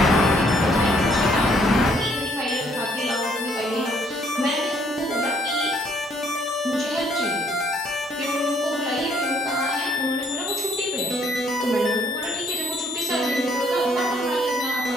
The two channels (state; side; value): normal; both; correlation 0.66